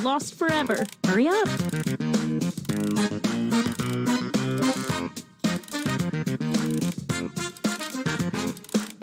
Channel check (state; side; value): identical; both; correlation 1.00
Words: forever. Hurry up.